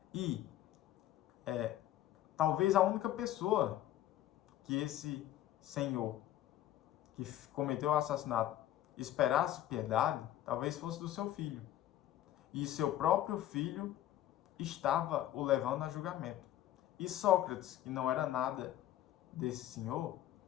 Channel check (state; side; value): quieter; right; 13.1 dB